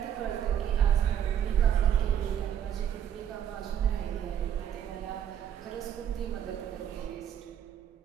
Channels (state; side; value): quieter; left; 9.6 dB